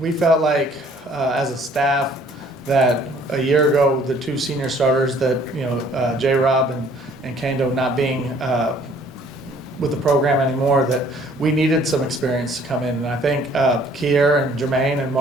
felt like as a staff that a year ago, the two senior starters that, J-Rob and Kendo not being with the program anymore, that we needed some experience to come in. And I think Kier and Jermaine and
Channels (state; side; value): normal; both; correlation 0.58